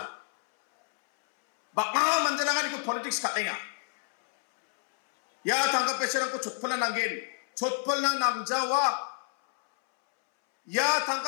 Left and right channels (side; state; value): right; silent; 59 dB below the other